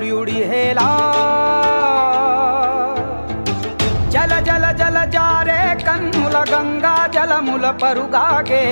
హేలా జల జల జల జారే కన్నుల గంగా జలముల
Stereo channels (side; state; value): both; inverted; correlation -1.00